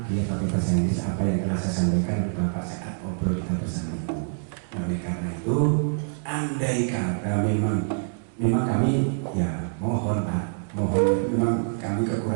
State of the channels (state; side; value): silent; left; digital silence